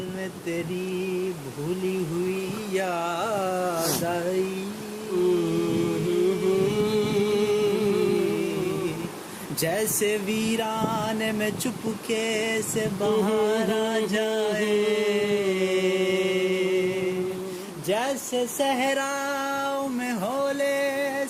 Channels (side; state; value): both; identical; correlation 1.00